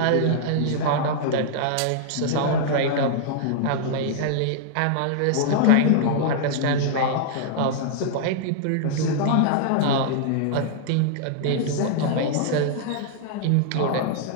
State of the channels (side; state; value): both; different; correlation -0.01